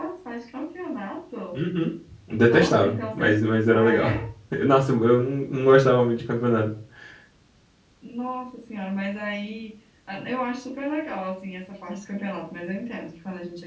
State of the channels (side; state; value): both; identical; correlation 1.00